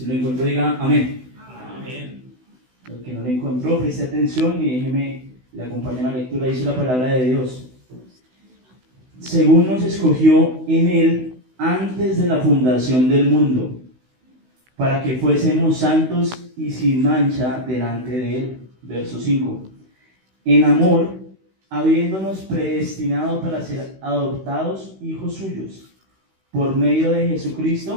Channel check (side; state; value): left; late; 16 ms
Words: lo encontró, diga amén. Amén. El que no lo encontró, preste atención y déjeme le acompañar a la lectura. Dice la palabra de Dios: según nos escogió en él antes de la fundación del mundo, para que fuésemos santos y sin mancha delante de él. Verso 5. En amor, habiéndonos predestinado para ser adoptados hijos suyos, por medio de